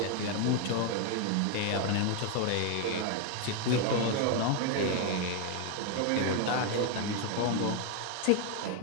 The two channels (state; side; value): different; both; correlation 0.01